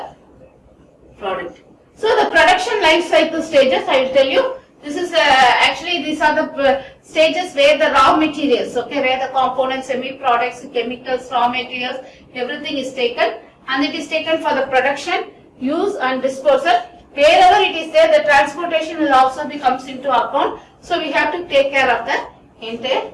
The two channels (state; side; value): identical; both; correlation 1.00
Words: product. So the production life cycle stages, I will tell you, this is actually these are the stages where the raw materials, okay, where the components, semi-products, chemicals, raw materials, everything is taken, and it is taken for the production, use and disposal. Wherever it is there, the transportation will also comes into account. So we have to take care of the entire